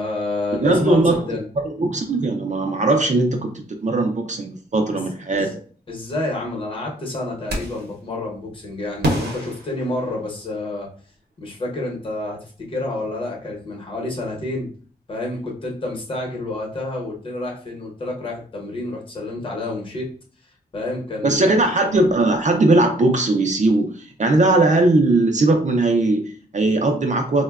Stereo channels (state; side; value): normal; both; correlation 0.61